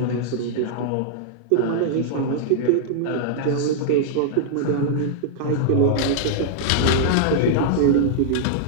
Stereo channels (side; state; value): both; different; correlation -0.01